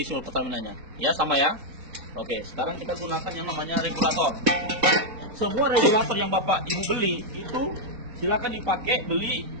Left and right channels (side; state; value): left; late; 4.2 ms